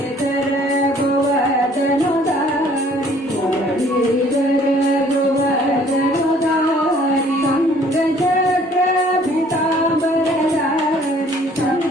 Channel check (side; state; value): both; normal; correlation 0.57